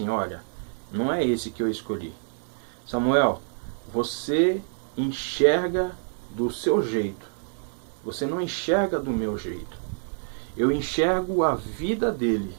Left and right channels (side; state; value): left; silent; digital silence